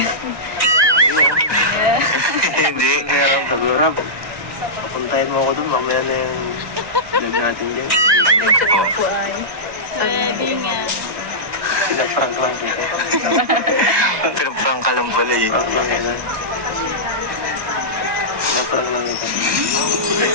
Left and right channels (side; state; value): left; late; 1.2 ms